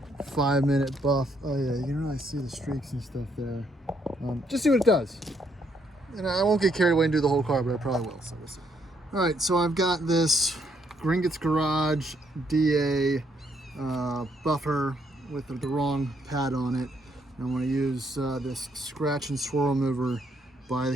5-minute buff. Oh yeah, you can really see the streaks and stuff there. Just see what it does. And I won't get carried away and do the whole car, but I probably will, so we'll see. All right, so I've got this Gringotts Garage DA buffer with the wrong pad on it. And I'm going to use this scratch and swirl remover by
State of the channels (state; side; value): normal; both; correlation 0.73